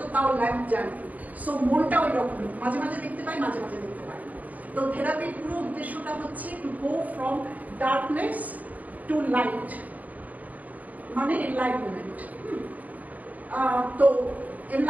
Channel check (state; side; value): late; left; 0.075 ms